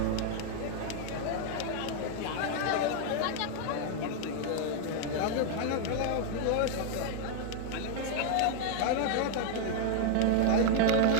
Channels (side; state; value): both; different; correlation 0.00